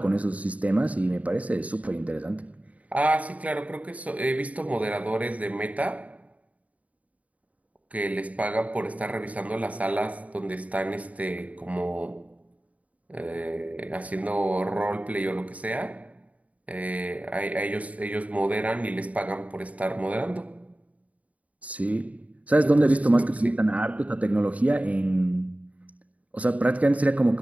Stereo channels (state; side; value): late; left; 0.069 ms